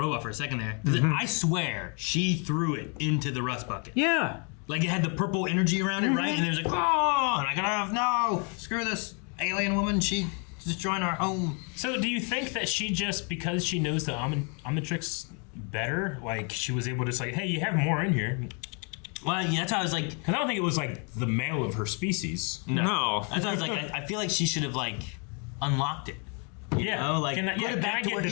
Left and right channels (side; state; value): right; quieter; 36.8 dB